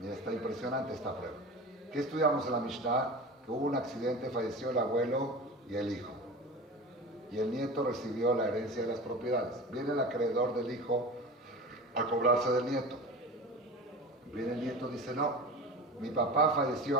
está impresionante esta prueba. ¿Qué estudiamos en la Mishnah? Que hubo un accidente, falleció el abuelo y el hijo. Y el nieto recibió la herencia de las propiedades. Viene el acreedor del hijo a cobrarse del nieto. Viene el nieto y dice, no, mi papá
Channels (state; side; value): normal; both; correlation 0.32